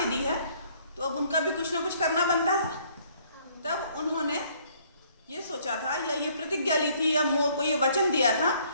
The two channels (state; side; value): inverted; both; correlation -0.62